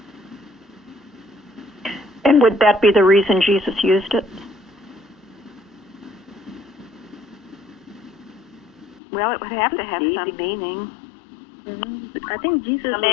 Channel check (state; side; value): drops out; right; at 9.0 s